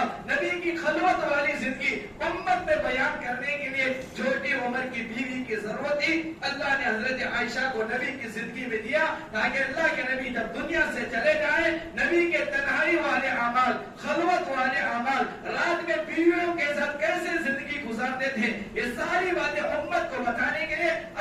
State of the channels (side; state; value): both; identical; correlation 1.00